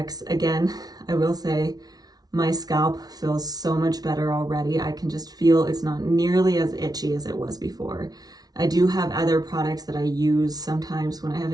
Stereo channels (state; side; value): late; left; 0.19 ms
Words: Again, I will say, My scalp feels so much better already. I can just feel it's not nearly as itchy as it was before. I do have other products that I use sometimes when I have